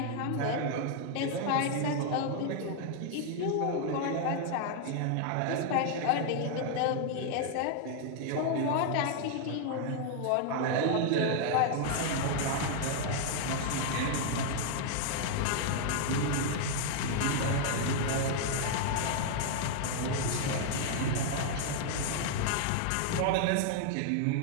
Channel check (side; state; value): both; different; correlation 0.00